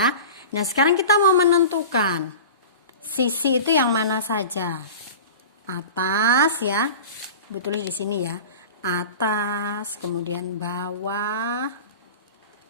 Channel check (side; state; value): both; inverted; correlation -0.35